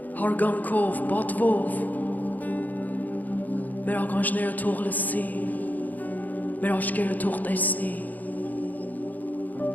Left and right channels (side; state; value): right; late; 0.082 ms